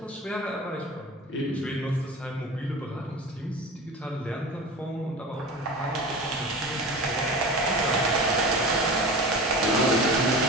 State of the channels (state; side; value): normal; both; correlation 0.33